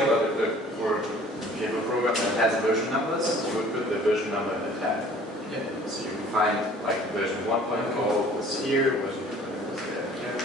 For if you have a program that has version numbers, you would put the version number in the tag. Yeah. So you can find like version 1.0 was here, version 2.0 was there.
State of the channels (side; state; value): both; normal; correlation 0.51